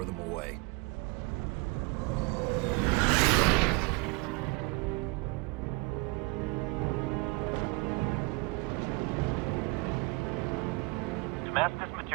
them away. Damascus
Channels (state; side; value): quieter; left; 26.9 dB